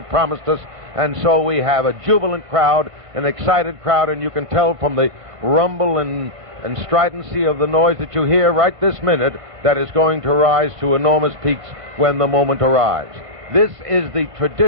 promised us, and so we have a jubilant crowd, an excited crowd, and you can tell from the rumble and stridency of the noise that you hear right this minute that is going to rise to enormous peaks when the moment arrives. This is the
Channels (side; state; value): left; late; 1.5 ms